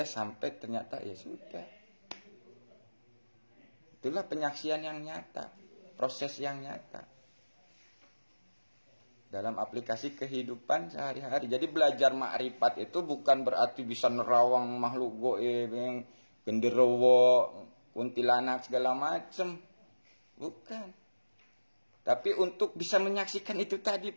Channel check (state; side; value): inverted; both; correlation -1.00